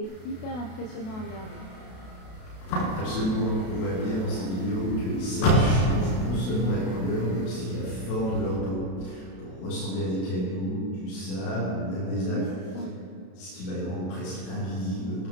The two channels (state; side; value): late; right; 32 ms